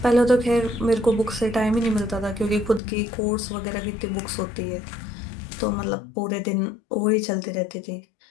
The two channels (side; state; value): right; drops out; at 2.8 s